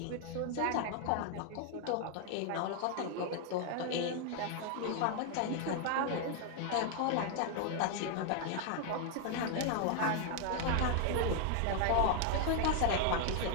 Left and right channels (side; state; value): both; different; correlation 0.00